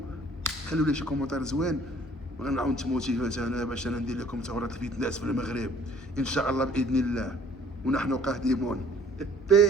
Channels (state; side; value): normal; both; correlation 0.55